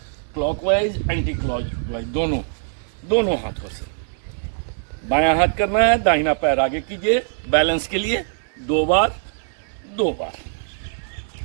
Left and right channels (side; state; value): left; silent; 59 dB below the other